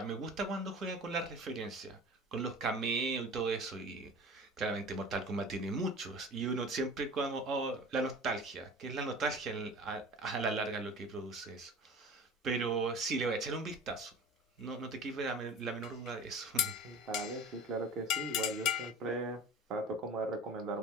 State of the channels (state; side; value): normal; both; correlation 0.39